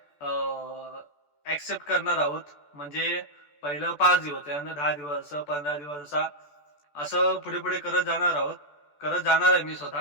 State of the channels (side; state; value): right; late; 14 ms